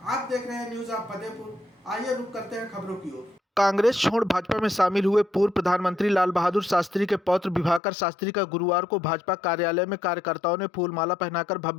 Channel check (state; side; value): drops out; right; at 7.8 s